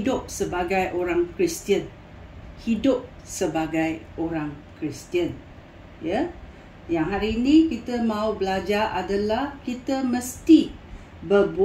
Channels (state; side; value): identical; both; correlation 1.00